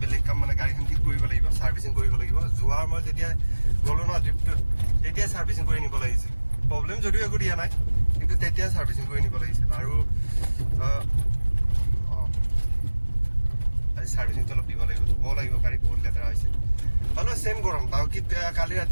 বেলেগ কাম, মানে গাড়ীখন ঠিক কৰিব লাগিব, ছাৰ্ভিচিং কৰিব লাগিব। যোৱাৰ মই যেতিয়া গ'লোঁ ন ট্ৰিপটোত, তেতিয়াই ছাৰ্ভিচিং কৰি নিব লাগিছিল। প্ৰব্লেম যদিও একো দিয়া নাই, কিন্তু তেতিয়াই ছাৰ্ভিচিং কৰি নিব লাগিছিল। আৰু আজি ছাৰ্ভিচিংটো অলপ দিব লাগিব, ধুব লাগিব, গাড়ী বহুত লেতেৰা হৈছে। হ'লেও ছেম গৰম, ডাউকিত কালি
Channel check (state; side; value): inverted; both; correlation -1.00